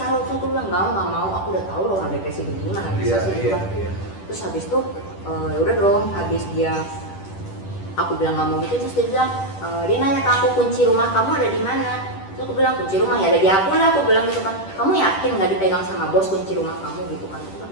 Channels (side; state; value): right; late; 10 ms